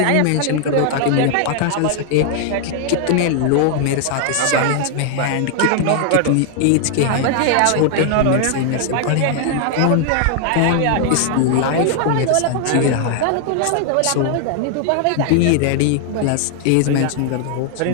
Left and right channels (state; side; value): different; both; correlation 0.00